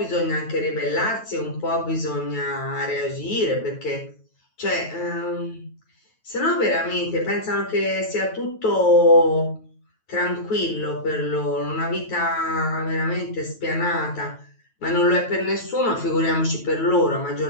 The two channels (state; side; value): late; right; 9.2 ms